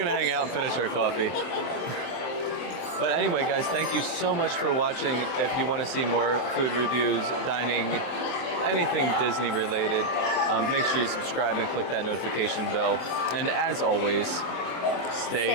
hang out and finish our coffee. But anyway, guys, thank you so much for watching. If you want to see more food reviews, dining, anything Disney related, make sure you subscribe and click that notification bell. And as always,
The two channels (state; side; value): late; right; 23 ms